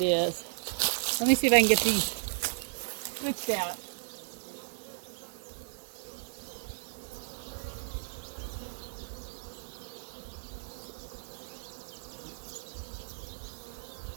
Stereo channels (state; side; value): silent; left; digital silence